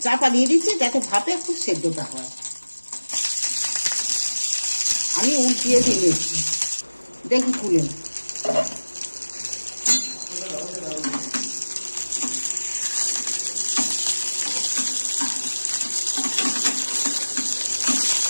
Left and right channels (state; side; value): inverted; both; correlation -1.00